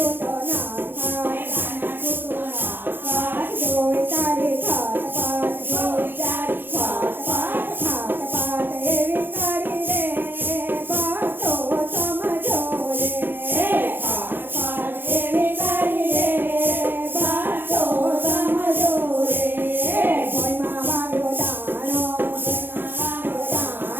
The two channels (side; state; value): left; late; 0.098 ms